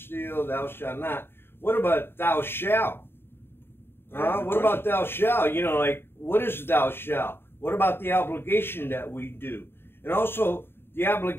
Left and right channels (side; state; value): right; late; 0.11 ms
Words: thou shalt not. What about thou shalt? What about thou shalt? You know, like, what is thou shalt? What about the obligation that we do? And also, the